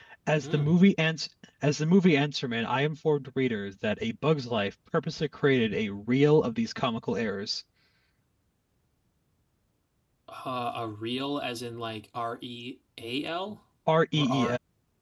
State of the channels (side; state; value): both; identical; correlation 1.00